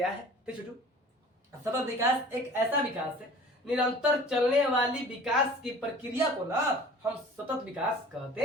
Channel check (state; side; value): normal; both; correlation 0.45